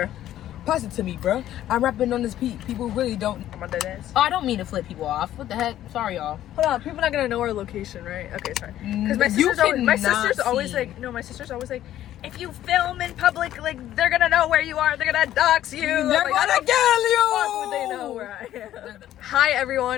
Pass it to me, bro. I'm rapping on this beat. People really don't. I'm on that ass. Oh, I don't mean to flip people off. What the heck? Sorry, y'all. Hold on. People not gonna know our location, right? Okay, sorry. Because my sister's always like, no, my sister's always like, if you film in public, like they're gonna know where you are. They're gonna dox you. They're gonna kill you. Fuck would they know where I am? Hi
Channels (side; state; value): right; quieter; 12.6 dB